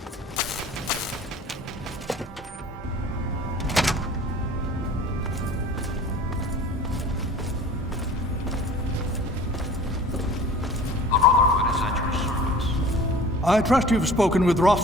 I trust you've spoken with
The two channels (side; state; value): both; normal; correlation 0.45